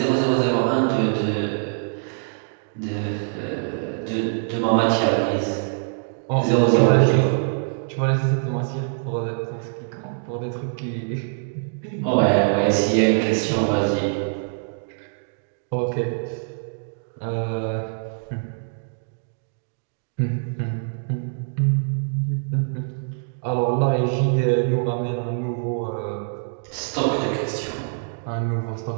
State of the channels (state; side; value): silent; left; digital silence